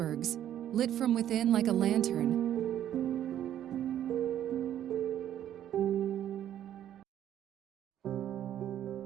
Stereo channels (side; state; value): left; quieter; 11.1 dB